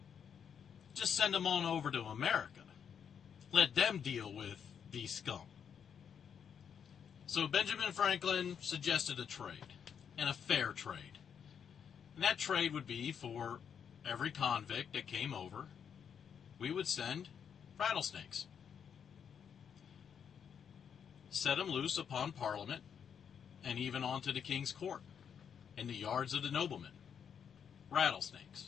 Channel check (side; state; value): right; quieter; 7.6 dB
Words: Just send them on over to America. Let them deal with these scum. So Benjamin Franklin suggested a trade, and a fair trade. And that trade would be for every convict that came over, we would send rattlesnakes. Set them loose upon Parliament, and even onto the King's Court, in the yards of the noblemen.